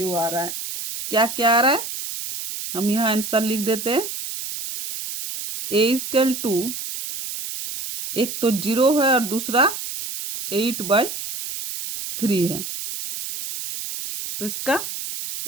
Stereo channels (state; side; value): noise; right; hiss, 7 dB below the sound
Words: आ रहा है, क्या क्या आ रहा है, हम यहाँ आंसर लिख देते हैं, a इक्वल टू एक तो 0 है और दूसरा 8/3 है, तो इसका